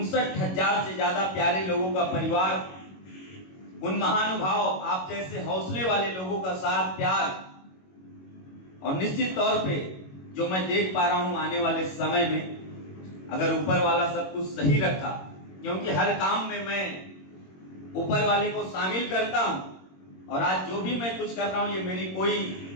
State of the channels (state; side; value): late; right; 21 ms